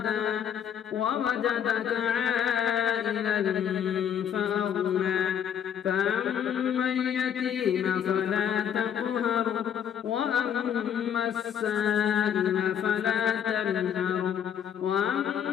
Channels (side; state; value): right; quieter; 8.8 dB